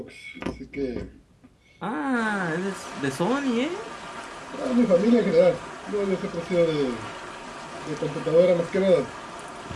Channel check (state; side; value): identical; both; correlation 1.00